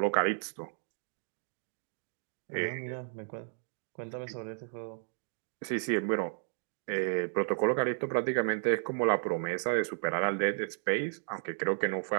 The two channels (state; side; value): silent; left; digital silence